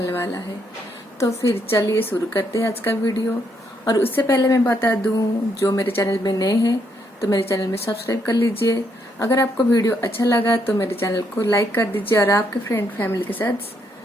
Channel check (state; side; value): normal; both; correlation 0.74